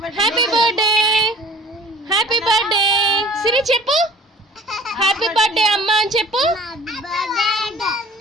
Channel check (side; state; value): both; normal; correlation 0.49